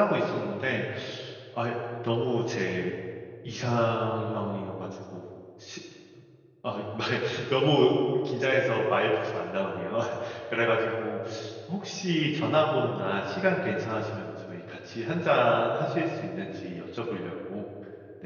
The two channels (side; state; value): both; identical; correlation 1.00